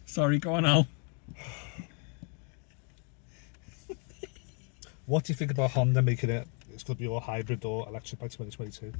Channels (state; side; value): quieter; right; 38.7 dB